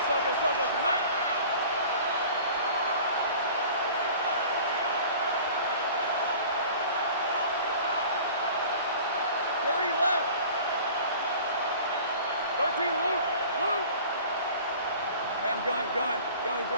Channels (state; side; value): inverted; both; correlation -0.44